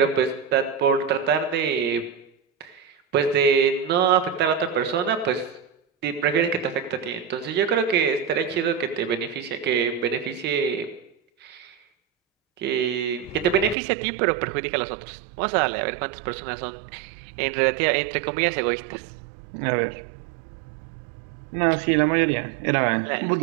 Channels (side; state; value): left; drops out; at 13.8 s